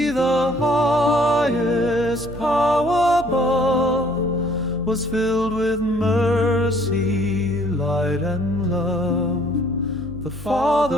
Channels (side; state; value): right; noise; hum, 15 dB below the sound